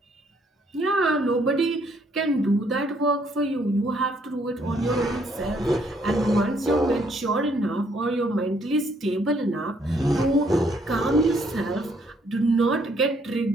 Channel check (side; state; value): both; normal; correlation 0.68